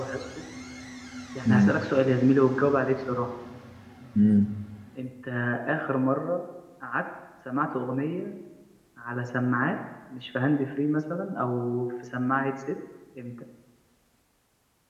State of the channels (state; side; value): identical; both; correlation 1.00